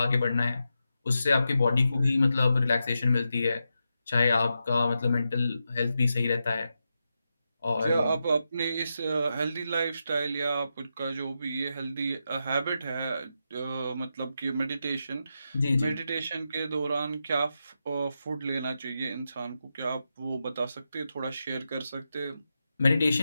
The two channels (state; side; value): inverted; both; correlation -0.87